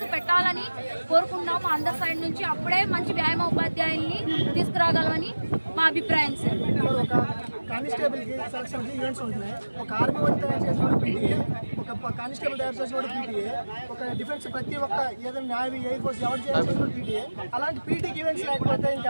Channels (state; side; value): inverted; both; correlation -1.00